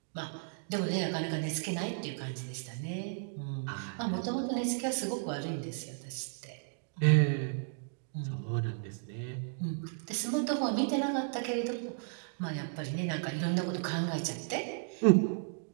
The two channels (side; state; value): left; silent; digital silence